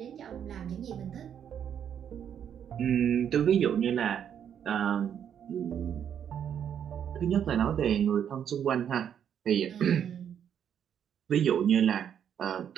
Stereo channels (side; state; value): left; quieter; 8.8 dB